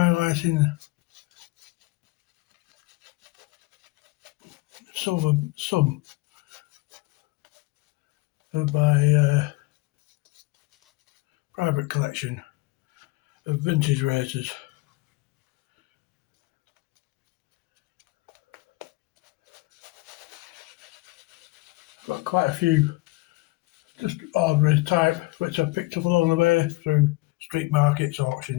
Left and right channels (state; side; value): quieter; right; 21.8 dB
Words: some of my private collection of vintage razors. Got quite a few just ordinary type which I picked up along the way through street markets,